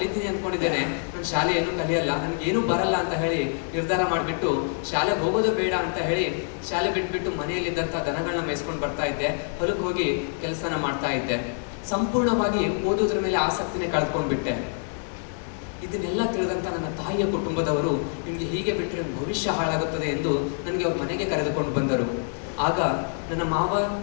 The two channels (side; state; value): right; silent; 57 dB below the other